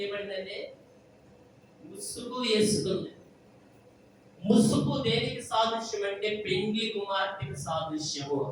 ముసుగు వేసుకుంది. ముసుగు దేనికి సాదృశ్యం అంటే పెండ్లి కుమార్తెకి సాదృశ్యము.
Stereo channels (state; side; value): identical; both; correlation 1.00